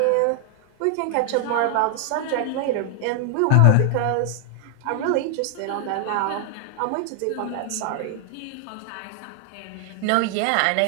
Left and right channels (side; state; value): both; different; correlation 0.00